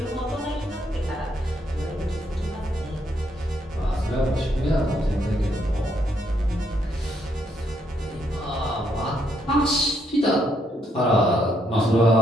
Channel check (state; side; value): normal; both; correlation 0.74